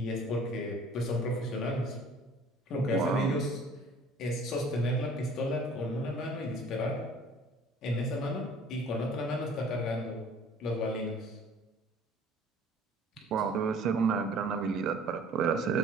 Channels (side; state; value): both; normal; correlation 0.51